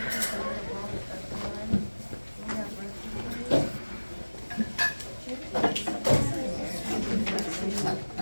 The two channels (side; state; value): both; inverted; correlation -1.00